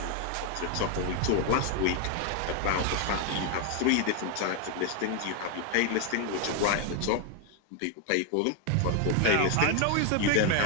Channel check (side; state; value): both; different; correlation 0.01